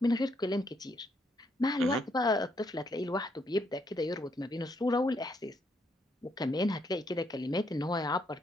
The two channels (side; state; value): both; normal; correlation 0.74